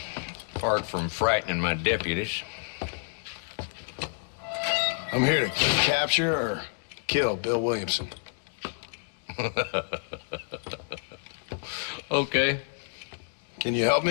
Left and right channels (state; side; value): silent; right; digital silence